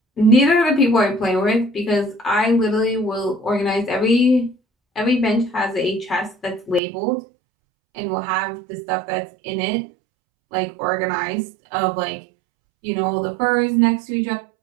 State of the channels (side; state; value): left; drops out; at 6.8 s